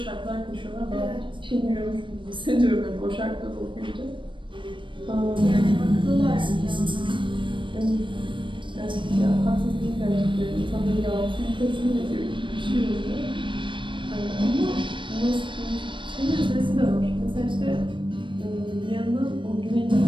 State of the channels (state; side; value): late; left; 0.24 ms